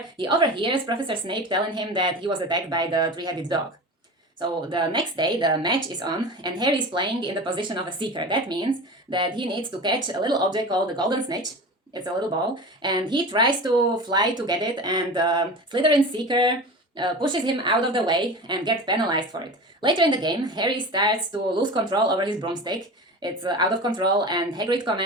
he overhears Professor Snape telling him that he was attacked by the three-headed dog. So the next day, the match is on, and Harry is playing in the position of a seeker. That means that he needs to catch a little object called the golden snitch. It's a little ball, and he tries to fly to get it, and Slytherin's seeker pushes him out of the way and gets penalized for it. Later in the game, Harry starts to lose control over his broomstick. It's out of control, and Hagrid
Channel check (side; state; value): both; normal; correlation 0.31